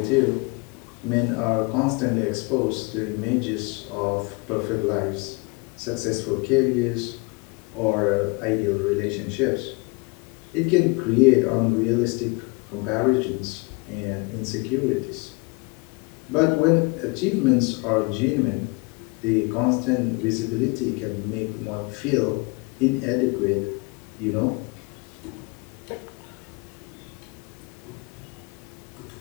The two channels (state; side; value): quieter; right; 28.8 dB